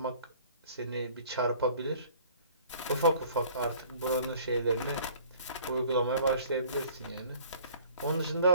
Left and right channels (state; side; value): inverted; both; correlation -0.52